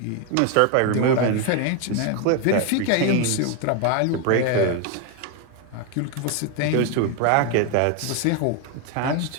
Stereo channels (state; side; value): different; both; correlation 0.01